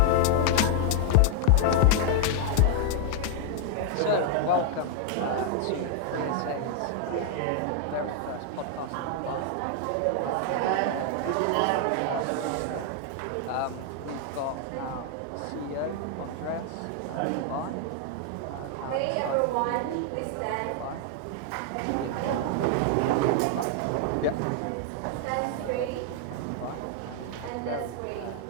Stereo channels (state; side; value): different; both; correlation 0.00